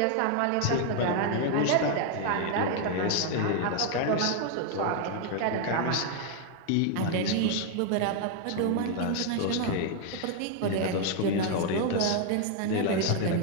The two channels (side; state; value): both; different; correlation 0.00